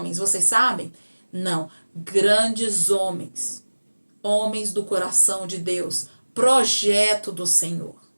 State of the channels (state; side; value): inverted; both; correlation -1.00